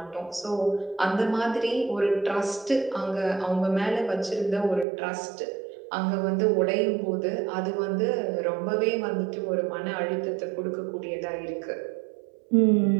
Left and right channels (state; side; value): drops out; left; at 4.9 s